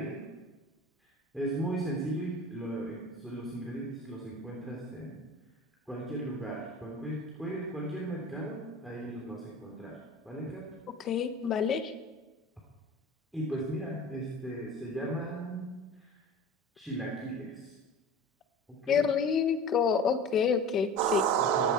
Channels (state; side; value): normal; both; correlation 0.37